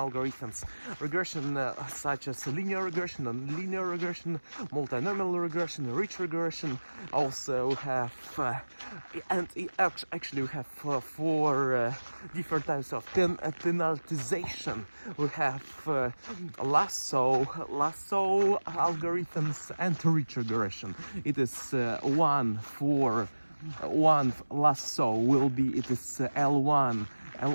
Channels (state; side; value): inverted; both; correlation -1.00